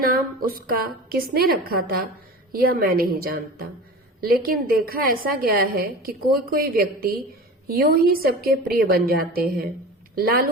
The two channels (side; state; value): both; normal; correlation 0.34